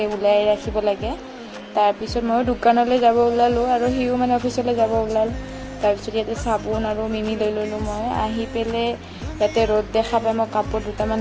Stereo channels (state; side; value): identical; both; correlation 1.00